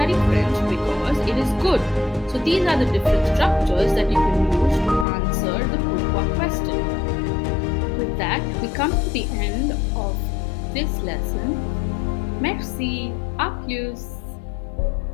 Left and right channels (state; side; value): drops out; right; at 5.1 s